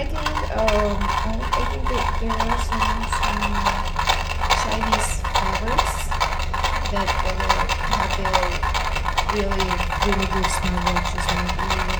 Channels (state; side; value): identical; both; correlation 1.00